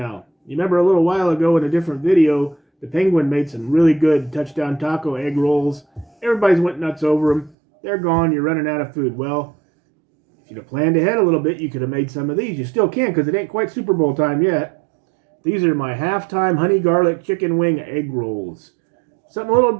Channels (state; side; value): drops out; left; at 7.6 s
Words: You remember a little while ago in a different video, the penguin made some really good touchdown taco egg rolls. Everybody's went nuts over them. They're gone, you're running out of food. Well, if you'd have planned ahead a little bit, you could have made some of these. You still can because it ain't quite Super Bowl time yet. These are my halftime honey garlic chicken wing egg rolls. Something a little